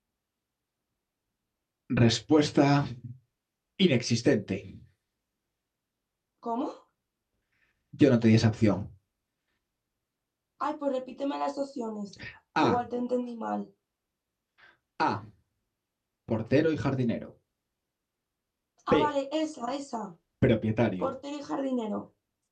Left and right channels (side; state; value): both; identical; correlation 1.00